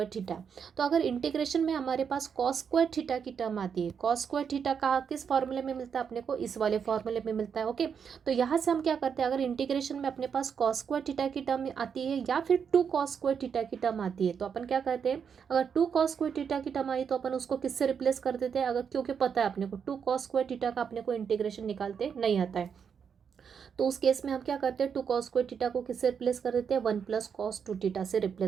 थीटा। तो अगर इंटीग्रेशन में हमारे पास कॉस स्क्वायर थीटा की टर्म आती है, कॉस स्क्वायर थीटा का किस फॉर्मूले में मिलता है अपने को, इस वाले फॉर्मूले में मिलता है। ओके, तो यहाँ से हम क्या करते हैं, अगर इंटीग्रेशन में अपने पास कॉस स्क्वायर थीटा की टर्म आती है या फिर 2 कॉस स्क्वायर थीटा की टर्म आती है, तो अपन क्या करते हैं, अगर 2 कॉस स्क्वायर थीटा की टर्म आई तो अपन उसको किससे रिप्लेस कर देते हैं, अगर क्योंकि पता है अपने को 2 कॉस स्क्वायर थीटा का अपने को इंटीग्रेशन निकालते नहीं आता है, तो उस केस में हम क्या करते हैं, 2 कॉस स्क्वायर थीटा को किससे रिप्लेस कर देते हैं, 1 प्लस कॉस टू थीटा से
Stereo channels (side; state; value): left; quieter; 7.0 dB